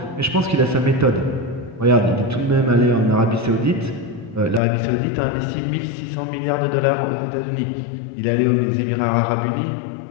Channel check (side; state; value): right; drops out; at 4.6 s